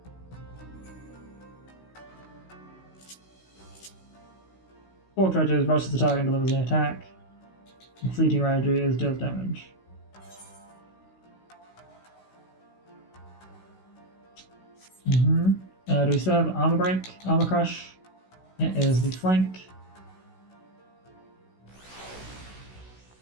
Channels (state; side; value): late; right; 16 ms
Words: Four Dredges rushes the target and delivers an attack. And Fleeting Rage is deals damage. Do we still have Armor Break? Armor Crush? It is the flank.